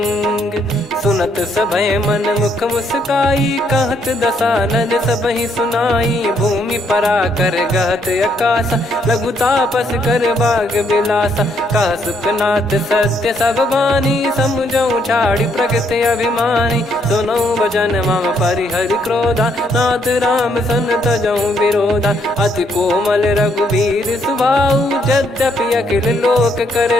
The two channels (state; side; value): normal; both; correlation 0.72